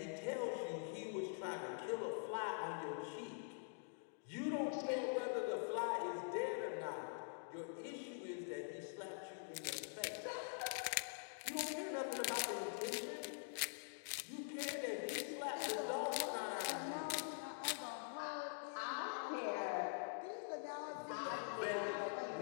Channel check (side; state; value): right; silent; digital silence